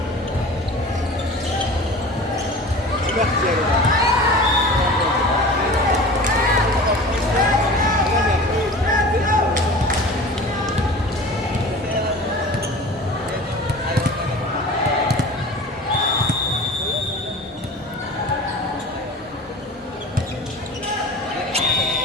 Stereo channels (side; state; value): both; normal; correlation 0.38